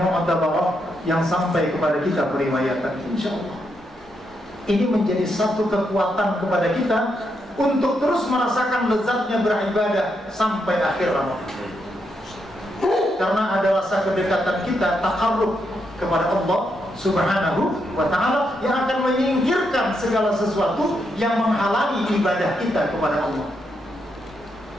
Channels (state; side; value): normal; both; correlation 0.81